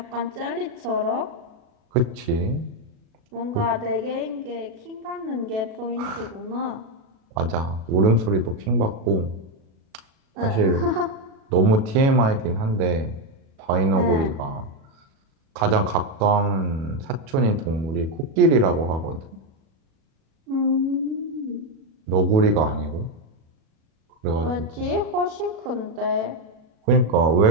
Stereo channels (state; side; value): late; left; 37 ms